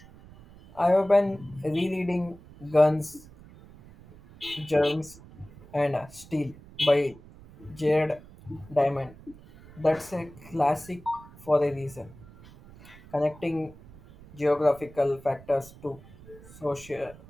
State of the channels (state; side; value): noise; right; rumble, 21 dB below the sound